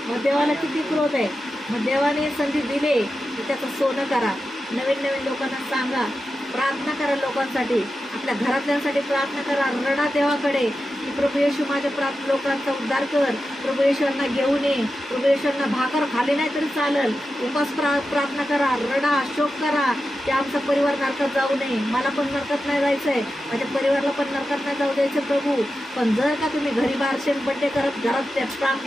मग देवाला किती क्रोध आहे. मग देवाने संधी दिले की त्याचं सोनं करा, नवीन नवीन लोकांना सांगा, प्रार्थना करा लोकांसाठी, आपल्या घरातल्यांसाठी प्रार्थना करा, रडा देवाकडे की प्रभू येशू माझ्या लोकांचा उद्धार कर, प्रभू येशूंना घेऊन ये, प्रभू येशूंना भाकर खाली नाही तरी चालेल, उपास प्रार्थना करा, रडा शोक करा की आमचा परिवार नरकात जाऊ नये, मला पण नरकात नाही जायचंय, माझ्या परिवाराला पण नरकात नाही जाऊ द्यायचं प्रभू. पण जर का तुम्ही घरी बारशेन बड्डे करत घरात त्या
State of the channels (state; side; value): normal; both; correlation 0.91